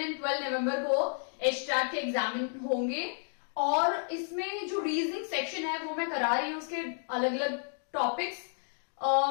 और 12 नवंबर को एचटेट के एग्जाम होंगे। और इसमें जो रीजनिंग सेक्शन है वो मैं करा रही हूँ, उसके अलग अलग टॉपिक्स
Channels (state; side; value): silent; right; 57 dB below the other